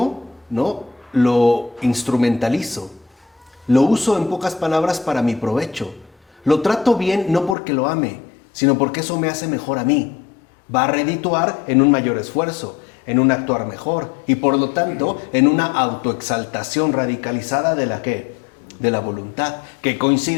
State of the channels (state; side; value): drops out; right; at 7.6 s